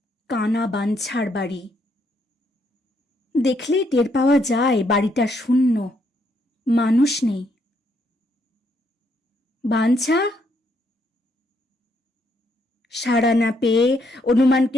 কানা বাঞ্ছার বাড়ি। দেখলেই টের পাওয়া যায় বাড়িটা শূন্য, মানুষ নেই। বাঞ্ছা? সাড়া না পেয়ে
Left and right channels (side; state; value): both; normal; correlation 0.74